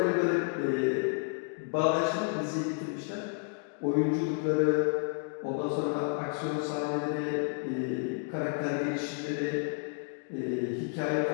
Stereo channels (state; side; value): quieter; right; 39.6 dB